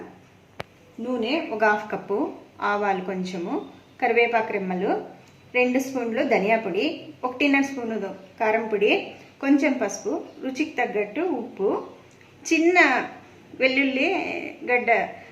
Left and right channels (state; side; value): identical; both; correlation 1.00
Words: నూనె ఒక 1/2 కప్పు, ఆవాలు కొంచెము, కరివేపాకు రెమ్మలు, 2 స్పూన్లు ధనియా పొడి, 1.5 స్పూను కారం పొడి, కొంచెం పసుపు, రుచికి తగ్గట్టు ఉప్పు, చిన్న వెల్లుల్లి గడ్డ